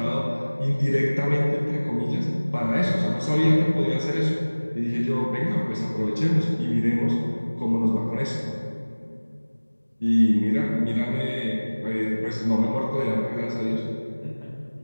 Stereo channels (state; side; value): inverted; both; correlation -1.00